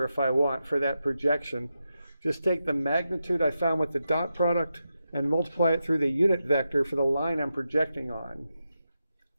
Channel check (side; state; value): both; inverted; correlation -0.88